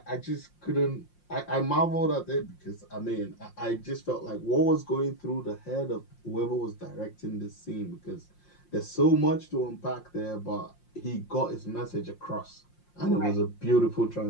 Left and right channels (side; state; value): right; late; 5.7 ms